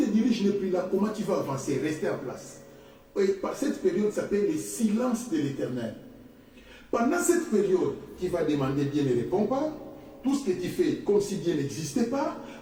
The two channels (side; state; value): both; identical; correlation 1.00